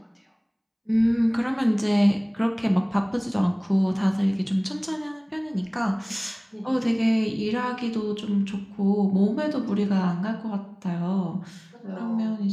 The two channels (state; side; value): identical; both; correlation 1.00